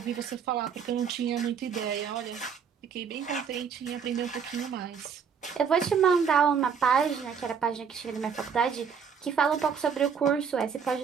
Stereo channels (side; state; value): left; quieter; 6.7 dB